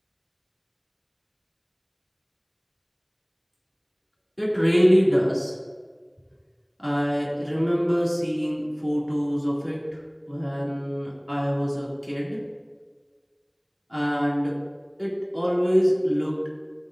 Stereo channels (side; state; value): both; identical; correlation 1.00